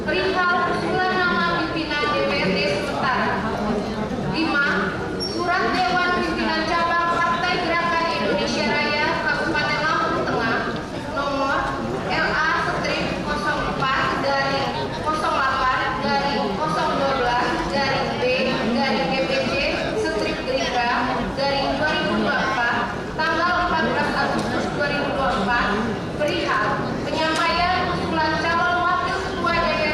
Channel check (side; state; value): both; identical; correlation 1.00